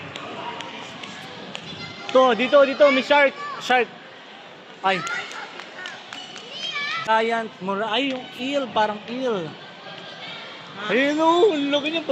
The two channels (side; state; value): both; identical; correlation 1.00